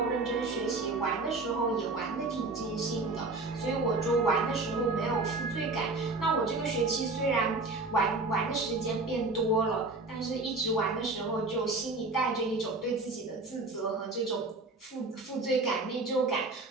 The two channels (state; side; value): quieter; left; 3.3 dB